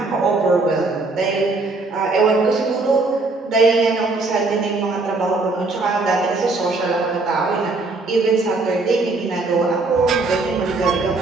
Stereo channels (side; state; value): left; quieter; 3.5 dB